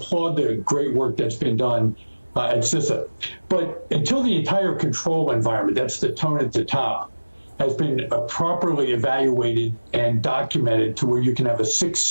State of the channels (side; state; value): both; inverted; correlation -1.00